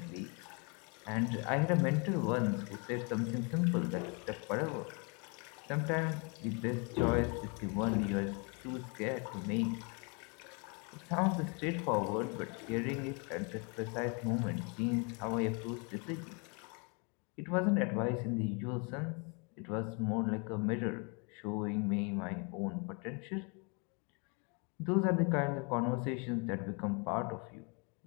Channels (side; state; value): right; quieter; 33.6 dB